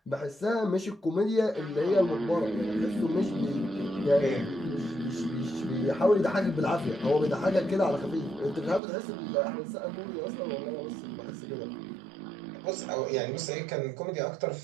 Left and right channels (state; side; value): drops out; left; at 8.8 s